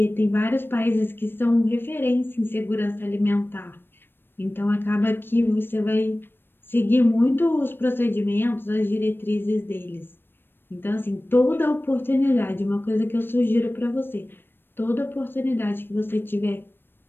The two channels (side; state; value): right; late; 0.099 ms